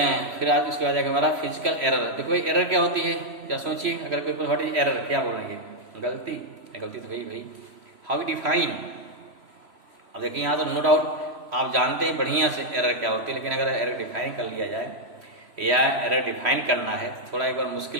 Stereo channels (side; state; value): left; late; 3.0 ms